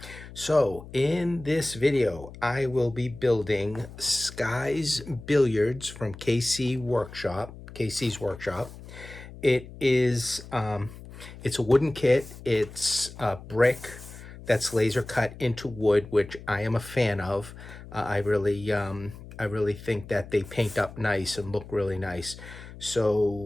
So in this video, I will be building Sky's Billiards from KC's Workshop. It is it's a wooden kit. It's a brick that's laser cut into wood, which I am a fan of. I really think that they paint up nice and look really nice.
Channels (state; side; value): noise; left; hum, 15 dB below the sound